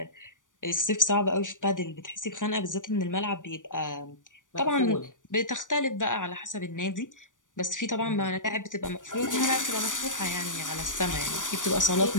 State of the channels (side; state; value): right; late; 0.87 ms